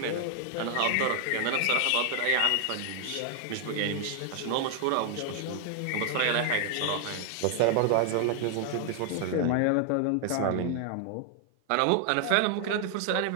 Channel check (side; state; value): both; different; correlation 0.00